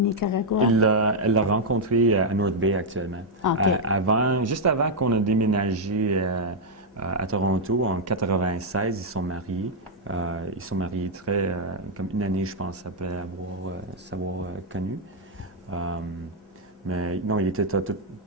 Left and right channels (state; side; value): normal; both; correlation -0.02